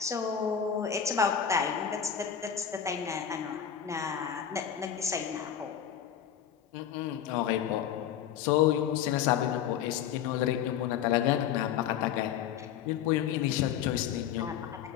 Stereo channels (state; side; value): quieter; right; 9.0 dB